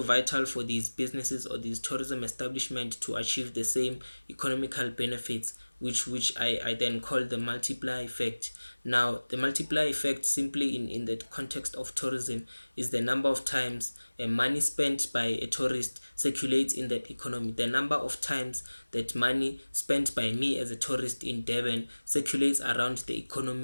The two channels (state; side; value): inverted; both; correlation -1.00